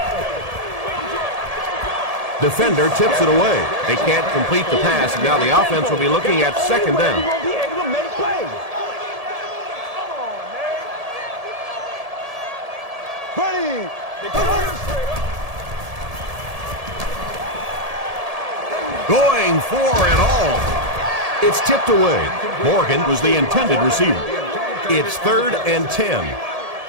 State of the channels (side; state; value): left; late; 1.7 ms